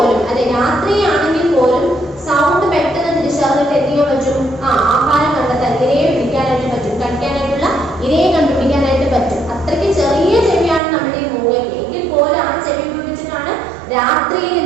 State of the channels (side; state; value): left; drops out; at 10.8 s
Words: അല്ലെ, രാത്രിയാണെങ്കിൽ പോലും സൗണ്ട് പെട്ടെന്ന് തിരിച്ചറിഞ്ഞിട്ട് എന്ത് ചെയ്യാൻ പറ്റും? ആഹാരം കണ്ടെത്താൻ, ഇരയെ പിടിക്കാനായിട്ട് പറ്റും, കഴിക്കാനായിട്ടുള്ള ഇരയെ കണ്ടുപിടിക്കാനായിട്ട് പറ്റും. അത്രയ്ക്ക് ചെറിയ ചെവിയാണ് നമ്മുടെ ഈ മൂങ്ങയ്ക്ക്. എങ്കിൽ പോലും ആ ചെവി ഉപയോഗിച്ചിട്ടാണ് രാത്രിയിൽ